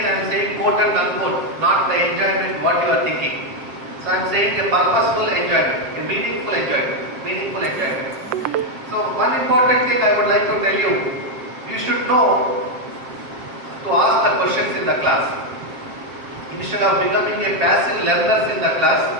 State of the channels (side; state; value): left; late; 7.5 ms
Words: I am saying quote and unquote, not the enjoyment what you are thinking. So I am saying a purposeful enjoyment, a meaningful enjoyment. So one important thing I would like to tell you, you should know to ask the questions in the class. Instead of becoming a passive learner in the class,